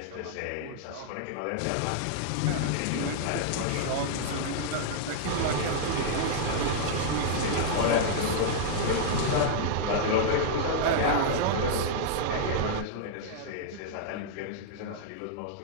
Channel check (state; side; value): different; both; correlation -0.01